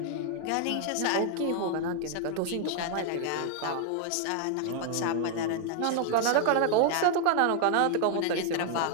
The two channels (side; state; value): both; different; correlation 0.00